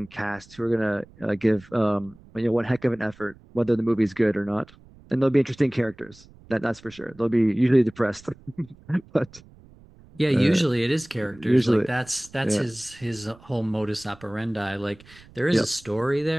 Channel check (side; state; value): right; noise; rumble, 24 dB below the sound